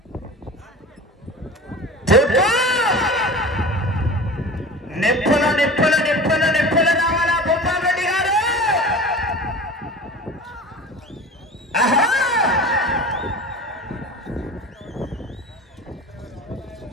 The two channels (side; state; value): both; normal; correlation 0.36